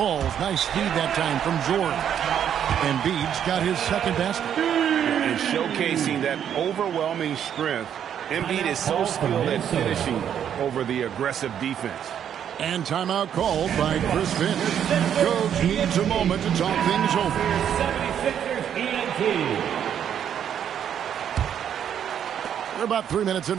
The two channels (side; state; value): left; quieter; 9.2 dB